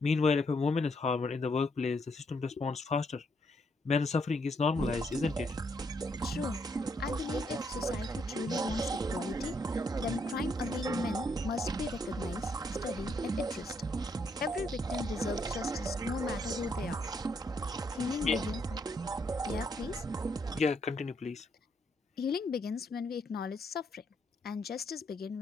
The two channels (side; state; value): both; normal; correlation 0.74